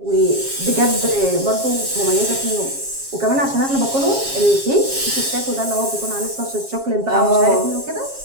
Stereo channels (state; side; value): late; left; 7.4 ms